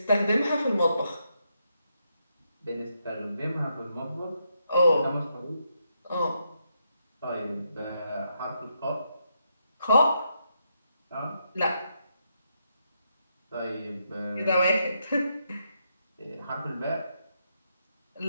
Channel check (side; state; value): both; inverted; correlation -0.80